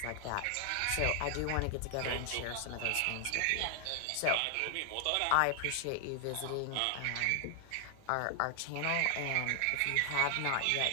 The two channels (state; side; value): different; both; correlation 0.00